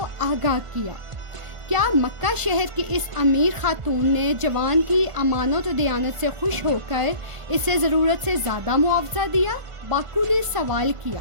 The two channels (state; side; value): late; left; 1.5 ms